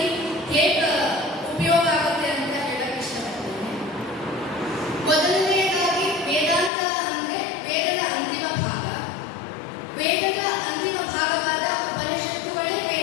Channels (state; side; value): drops out; right; at 6.7 s